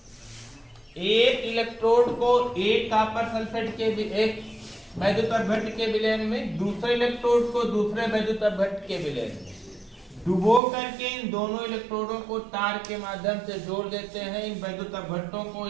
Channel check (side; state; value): left; drops out; at 10.6 s